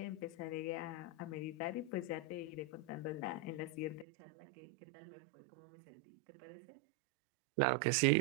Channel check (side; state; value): left; drops out; at 4.0 s